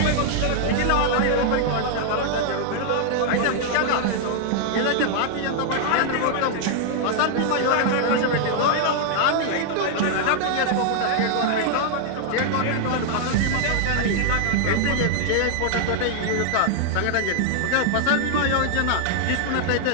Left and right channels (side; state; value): both; different; correlation -0.01